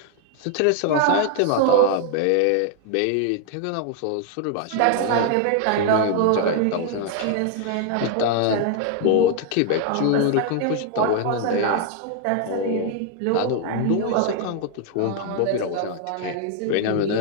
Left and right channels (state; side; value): different; both; correlation 0.00